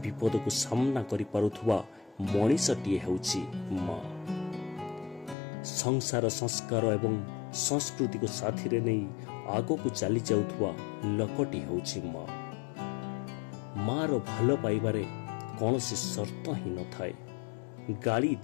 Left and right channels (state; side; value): drops out; right; at 5.4 s